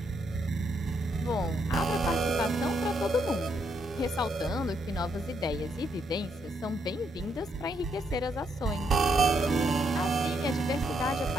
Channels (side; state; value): both; normal; correlation 0.76